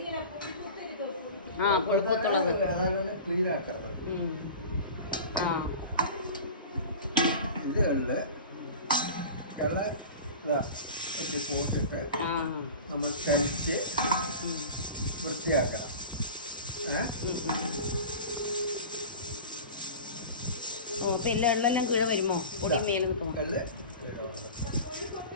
പുഴുക്കത്തുള്ളത് ക്ലീൻ ആക്കരുത്. ഇത് എള്ള് പോട്ടിട്ട് നമ്മൾ കഴിച്ച് വൃത്തിയാക്കണം. പിന്നെ എള്ളെല്ലാം കീഴ വരുമോ? പൊടി മേലെ നിൽക്കുമോ?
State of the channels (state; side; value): inverted; both; correlation -0.35